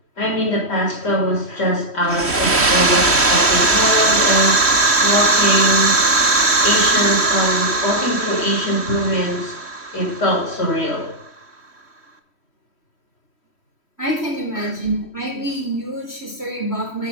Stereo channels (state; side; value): late; right; 3.1 ms